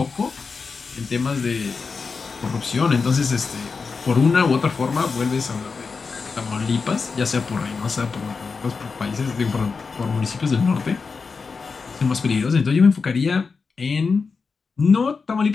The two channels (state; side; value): quieter; right; 4.9 dB